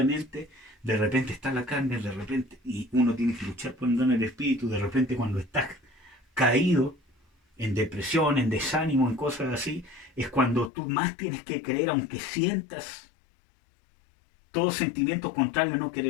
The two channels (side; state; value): right; drops out; at 10.7 s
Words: de repente está la carne, de repente, y uno tiene que luchar por andar en el espíritu, de repente cuando estás caído, en depresión, en desánimo, en cosas así, es cuando tú más tienes que creer, aunque sientas todo sentimiento contrario, no